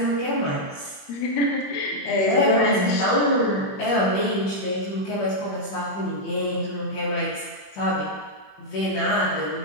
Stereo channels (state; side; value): late; right; 21 ms